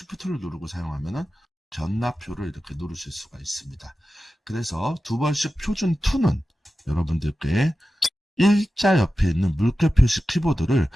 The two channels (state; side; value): normal; both; correlation 0.94